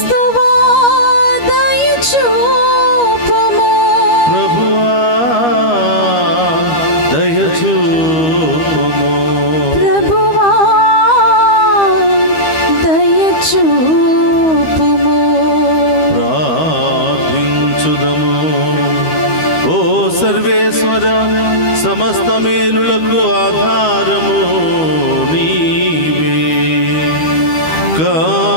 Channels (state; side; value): late; right; 13 ms